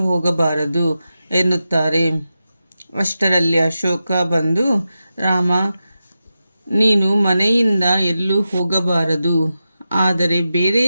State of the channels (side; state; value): both; inverted; correlation -0.91